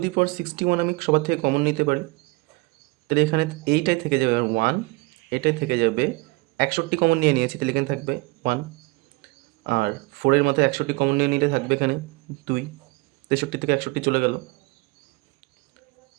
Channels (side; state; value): left; quieter; 25.0 dB